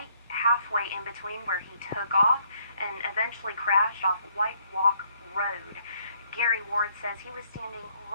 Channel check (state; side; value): inverted; both; correlation -0.68